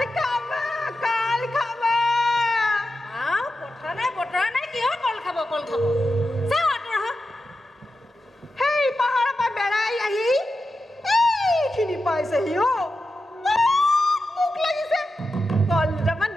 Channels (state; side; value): normal; both; correlation 0.90